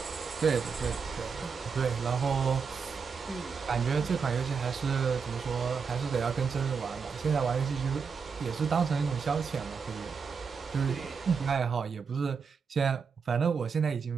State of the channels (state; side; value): quieter; left; 5.7 dB